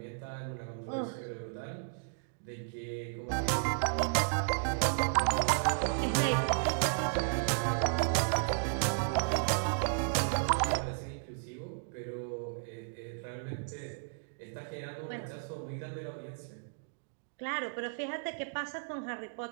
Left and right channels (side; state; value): left; silent; digital silence